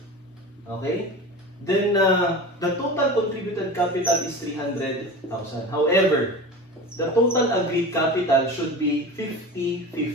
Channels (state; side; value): normal; both; correlation 0.32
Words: Okay? Then, the total contributed capital is 300,000. However, the total agreed capital should be